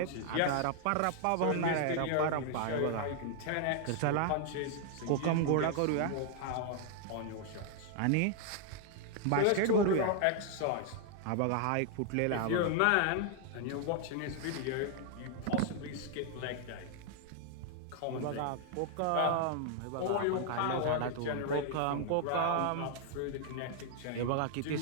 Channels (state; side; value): different; both; correlation 0.00